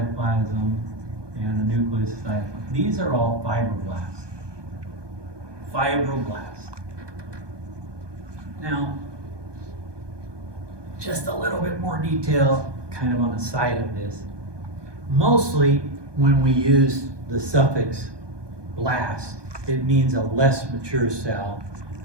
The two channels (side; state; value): left; late; 1.2 ms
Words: and a nucleus of cytoplasm. These are all fibroblasts. Fibroblasts. Now, just a little bit more detail, kind of on the side of this. Mostly, when we use the suffix blast, it means a less mature cell